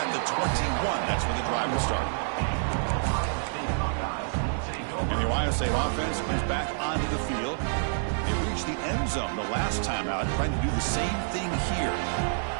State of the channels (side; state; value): left; silent; digital silence